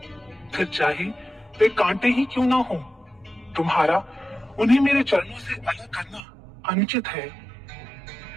फिर चाहे वे कांटे ही क्यों ना हो, तुम्हारा उन्हें मेरे चरणों से अलग करना अनुचित है।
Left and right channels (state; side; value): drops out; left; at 6.2 s